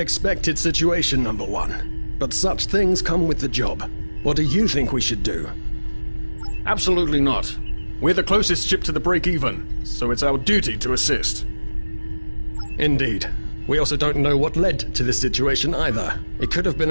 situation, number 1. But such things come with the job. What do you think we should do? Absolutely not. We're the closest ship to the break-even, so it's our duty to assist. Indeed. We also don't know what led to this situation either. It could have been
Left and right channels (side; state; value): both; inverted; correlation -1.00